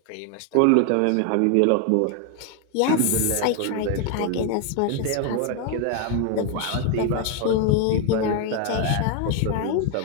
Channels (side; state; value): both; different; correlation 0.01